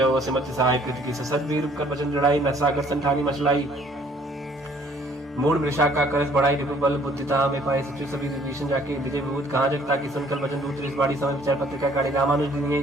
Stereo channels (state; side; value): normal; both; correlation 0.59